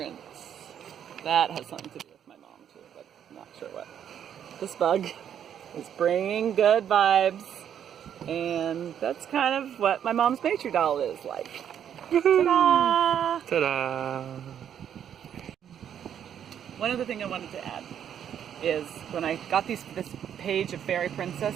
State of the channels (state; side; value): quieter; left; 9.2 dB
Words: That has something to do with my mom too, but I'm not sure what. This bug is bringing good vibes. And that's kind of what my mom's Maitri doll is like. Ta-da! Ta-da! One other thing I wanted to add is when I got this page of fairy princess